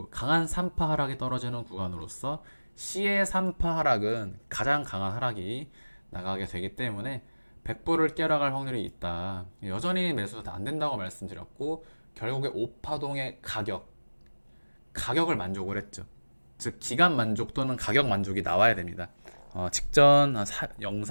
강한 3파 하락이 떨어지는 구간으로서 C의 3파 하락은 가장 강한 하락이 나가게 되기 때문에 100불을 깨러갈 확률이 있다. 여전히 매수가 안 된다고 말씀드렸고, 결국에 5파동의 가격을 만족을 했죠. 즉 기간 만족 또는 가격 만족이 나와야 됩니다. 직전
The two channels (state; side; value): inverted; both; correlation -1.00